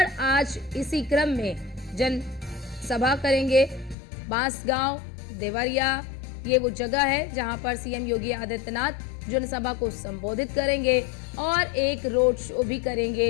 आज इसी क्रम में जनसभा करेंगे। बांसगांव, देवरिया, ये वो जगह है जहां पर सीएम योगी आदित्यनाथ जनसभा को संबोधित करेंगे और एक रोड शो भी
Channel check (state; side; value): drops out; right; at 4.0 s